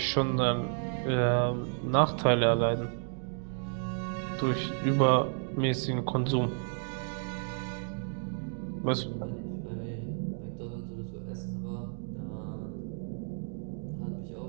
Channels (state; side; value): silent; left; 57 dB below the other